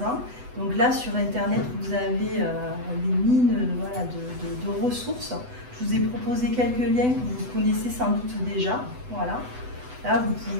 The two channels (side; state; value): left; late; 8.0 ms